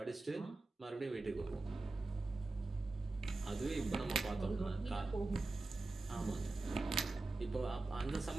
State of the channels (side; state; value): left; quieter; 3.3 dB